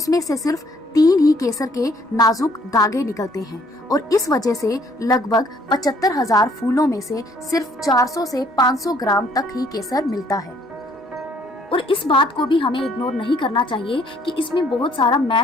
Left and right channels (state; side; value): normal; both; correlation 0.63